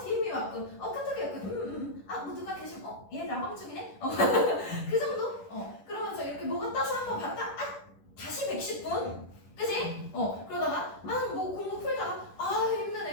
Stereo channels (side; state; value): right; late; 10 ms